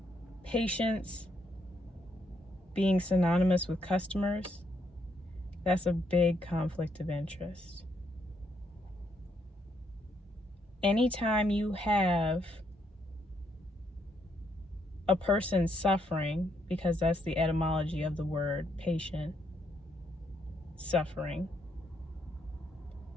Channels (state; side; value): normal; both; correlation 0.75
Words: patients being synonymous with customers, that's a big conflict of interest. Anytime you have a person suffering, because that's the etymology of the word patient, suffering.